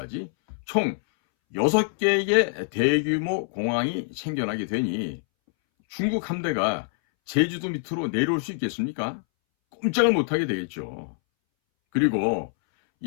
총 6개의 대규모 공항이 생겨나게 되니 중국 함대가 제주도 밑으로 내려올 수 있겠습니까? 꼼짝을 못하게 되겠죠. 그리고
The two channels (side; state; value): right; silent; 62 dB below the other